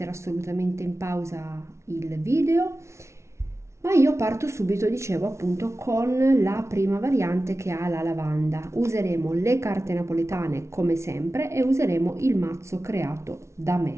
assolutamente in pausa il video, ma io parto subito, dicevo appunto, con la prima variante che ha la lavanda. Useremo le carte napoletane come sempre e useremo il mazzo creato da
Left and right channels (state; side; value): late; left; 0.13 ms